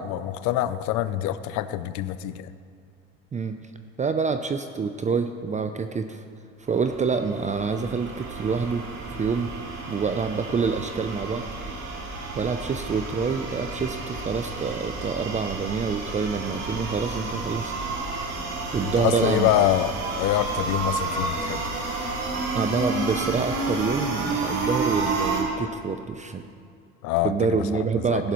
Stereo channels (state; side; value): normal; both; correlation 0.31